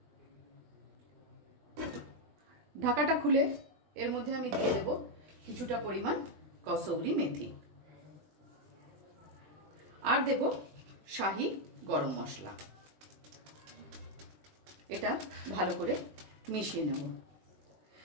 ঢাকাটা খুলে এর মধ্যে আমি দিয়ে দেব কিছুটা পরিমাণ কসৌরি মেথি আর দেব শাহি গরম মশলা। এটা ভালো করে মিশিয়ে নেব।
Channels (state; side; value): late; left; 20 ms